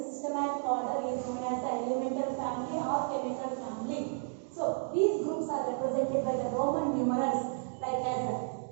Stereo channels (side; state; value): left; silent; digital silence